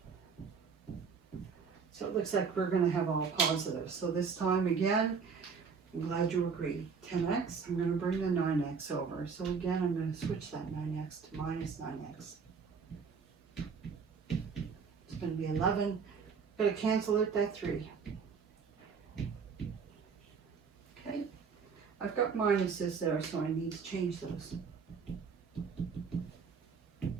So it looks like we're going to have all positives. So this time again, I'm glad you agree. 10x, I'm going to bring the 9x over. So again, I'm going to switch that 9x to minus 9x. It's going to be 11. Got to cancel it, that 3. Okay. I've got minuses there, so I need to change those.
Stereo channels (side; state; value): left; quieter; 5.7 dB